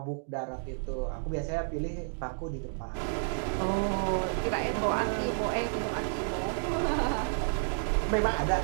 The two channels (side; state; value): left; silent; digital silence